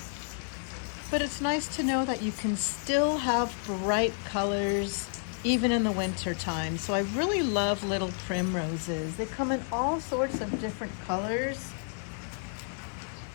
But it's nice to know that you can still have bright colors even in the winter time. So I really love little primroses. They come in all sorts of different colors.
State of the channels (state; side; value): silent; right; 57 dB below the other